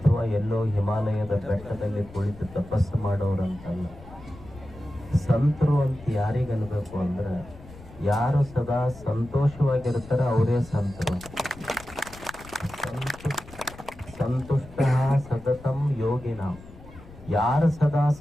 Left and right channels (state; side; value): noise; left; rumble, 19 dB below the sound